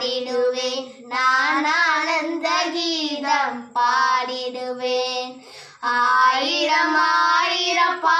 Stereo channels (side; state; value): both; identical; correlation 1.00